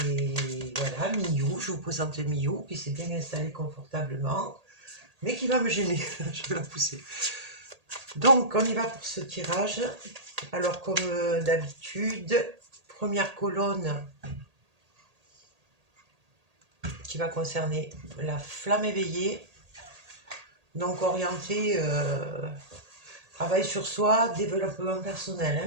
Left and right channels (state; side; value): late; left; 1.8 ms